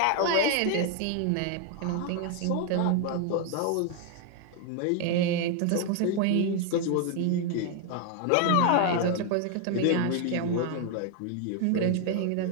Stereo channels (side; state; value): both; different; correlation 0.00